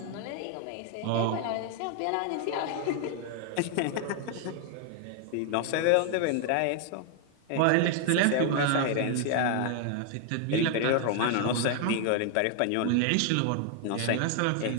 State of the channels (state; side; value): different; both; correlation 0.00